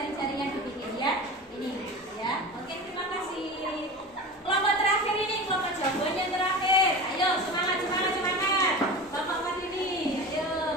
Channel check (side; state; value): both; normal; correlation 0.31